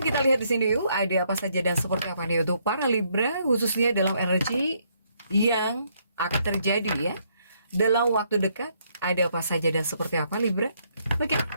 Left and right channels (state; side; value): inverted; both; correlation -0.72